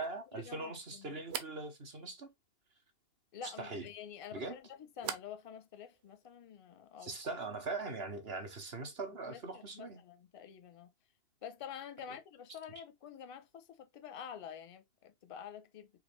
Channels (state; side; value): late; left; 2.9 ms